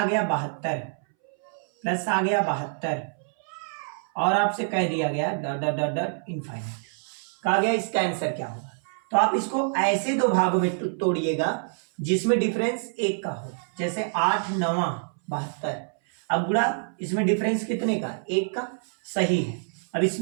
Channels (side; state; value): left; silent; 61 dB below the other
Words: गया 72 प्लस आ गया 72 और आपसे कह दिया गया dot dot dot dot infinite, कहा गया इसका आंसर क्या होगा, तो आप इसको ऐसे 2 भागों में तोड़िएगा जिसमें डिफरेंस 1 का हो, जैसे 8 9 72, अब गुणा इसमें डिफरेंस कितने का 1 का, सही है। अब